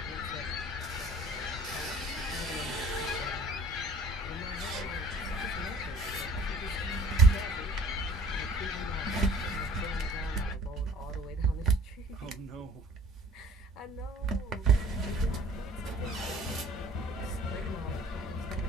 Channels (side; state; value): both; normal; correlation 0.49